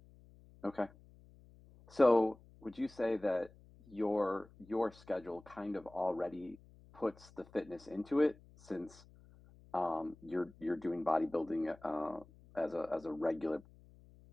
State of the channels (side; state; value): left; noise; hum, 24 dB below the sound